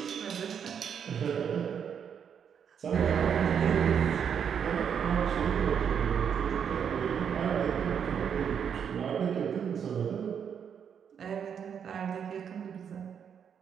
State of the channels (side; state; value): left; quieter; 7.7 dB